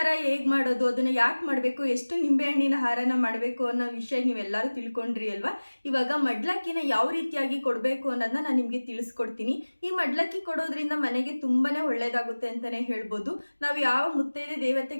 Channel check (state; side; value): inverted; both; correlation -1.00